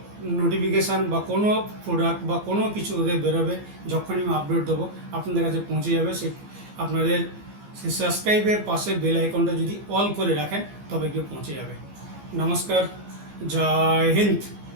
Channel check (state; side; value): late; left; 15 ms